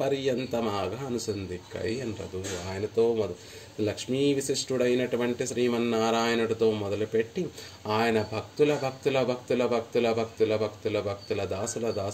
పర్యంతమాగా అనుసంధిక్కై ఎన్రదు. ఆయనతో లక్ష్మీ విశిష్టుడైనటువంటి శ్రీమన్నారాయణుడితో మొదలుపెట్టి ఆయన భక్తుల భక్తుల భక్తుల భక్తుల భక్తుల భక్తుల భక్తుల దాసుల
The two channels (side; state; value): both; identical; correlation 1.00